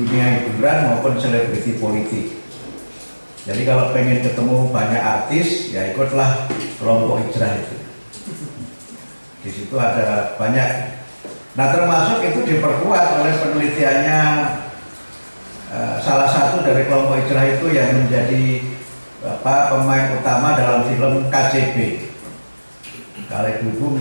hiburan maupun selebriti politik. Jadi kalau pengen ketemu banyak artis, ya ikutlah kelompok hijrah itu. Di situ ada banyak. Nah, termasuk itu diperkuat oleh penelitiannya salah satu dari kelompok hijrah itu yang menjadi pemain utama dalam film KCB. Kalau ibu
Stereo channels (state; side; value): inverted; both; correlation -1.00